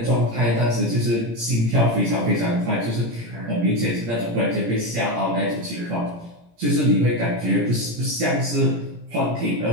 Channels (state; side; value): late; left; 17 ms